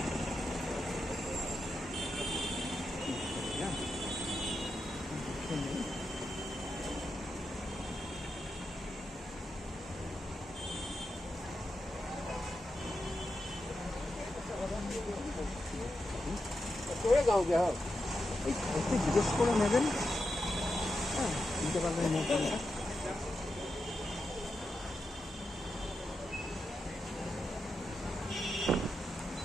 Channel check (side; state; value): both; normal; correlation 0.87